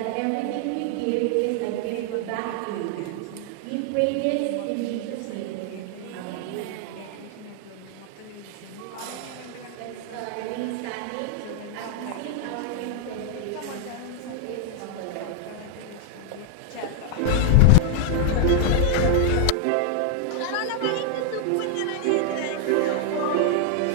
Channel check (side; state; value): both; different; correlation 0.00